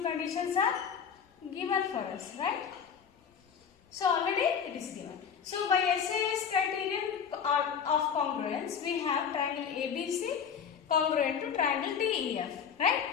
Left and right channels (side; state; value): right; quieter; 7.3 dB